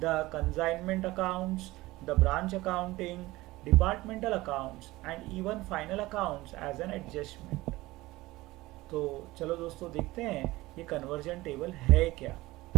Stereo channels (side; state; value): left; quieter; 19.2 dB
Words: the consignment accounts, the branch accounting, departmental accounts and even final accounts as an adjustment. तो चलो दोस्तों देखते हैं ये conversion table है क्या.